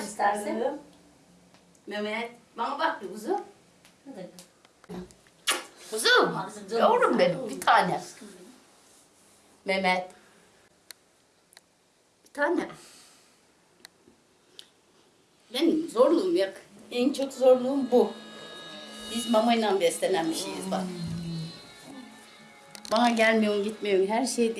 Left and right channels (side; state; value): both; identical; correlation 1.00